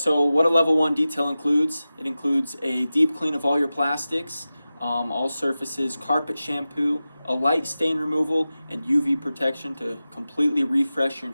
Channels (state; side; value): inverted; both; correlation -0.95